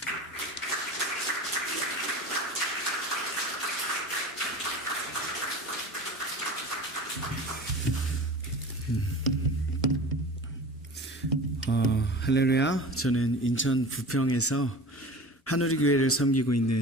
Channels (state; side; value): normal; both; correlation 0.36